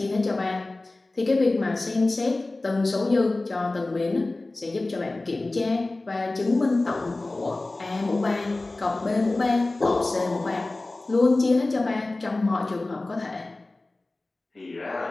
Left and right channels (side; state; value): right; quieter; 3.0 dB